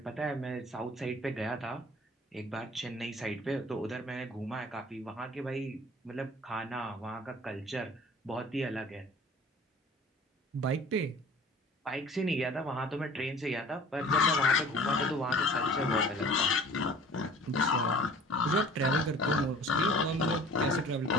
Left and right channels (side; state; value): both; normal; correlation 0.47